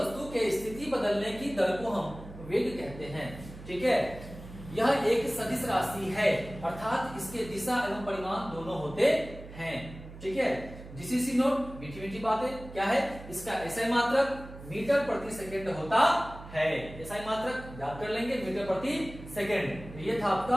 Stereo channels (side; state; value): right; noise; hum, 15 dB below the sound